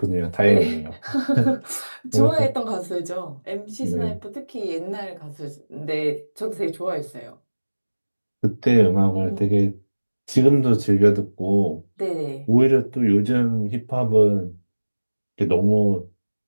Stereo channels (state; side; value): inverted; both; correlation -1.00